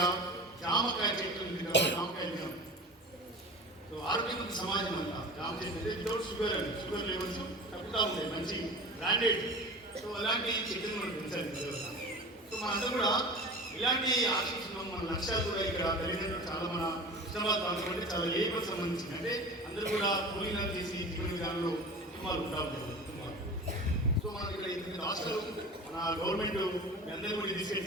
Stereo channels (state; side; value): normal; both; correlation 0.35